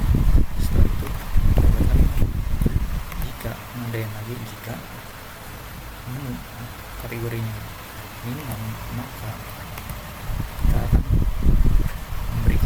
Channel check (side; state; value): both; identical; correlation 1.00